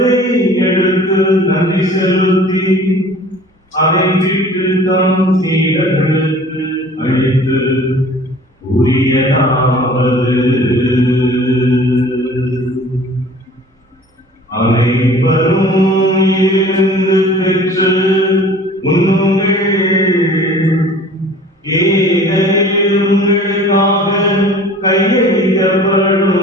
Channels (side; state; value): both; normal; correlation 0.47